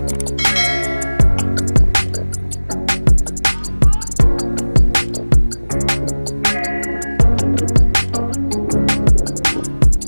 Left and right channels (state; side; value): inverted; both; correlation -1.00